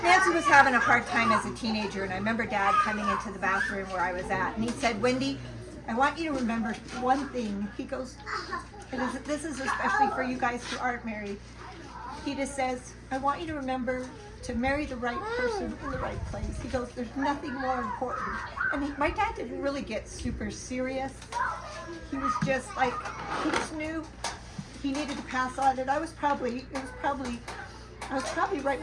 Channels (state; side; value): identical; both; correlation 1.00